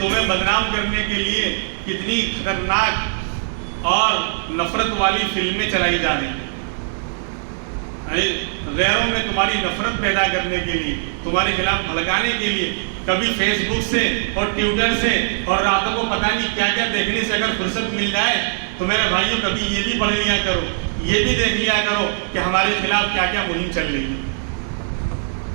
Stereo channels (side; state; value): left; silent; digital silence